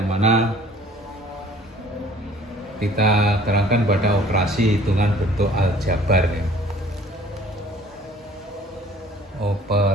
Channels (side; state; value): both; normal; correlation 0.53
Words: mana kita terangkan pada operasi hitungan bentuk aljabar.